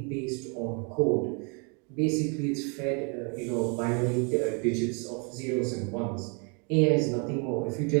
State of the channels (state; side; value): quieter; left; 35.4 dB